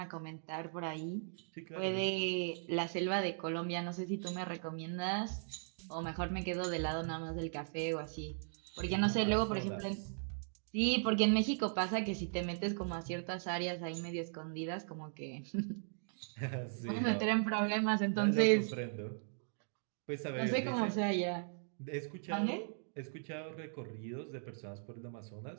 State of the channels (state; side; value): silent; left; digital silence